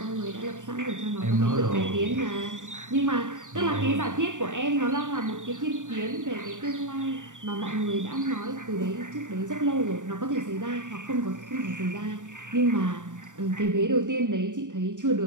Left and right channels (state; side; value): late; left; 0.87 ms